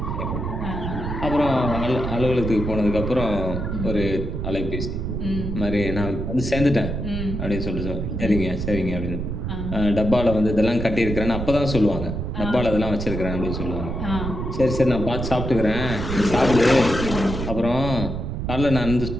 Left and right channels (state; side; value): noise; right; rumble, 4 dB below the sound